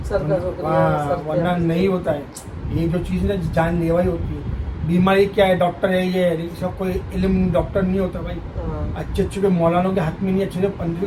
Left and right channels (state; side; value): identical; both; correlation 1.00